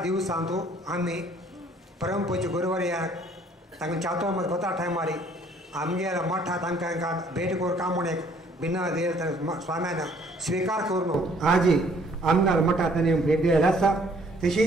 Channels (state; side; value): normal; both; correlation 0.60